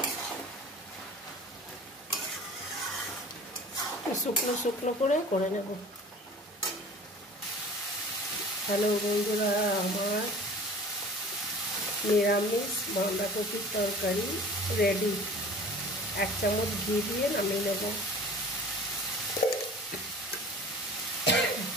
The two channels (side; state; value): both; normal; correlation 0.43